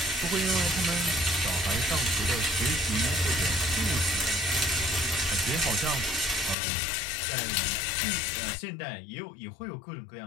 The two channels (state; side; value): drops out; right; at 6.6 s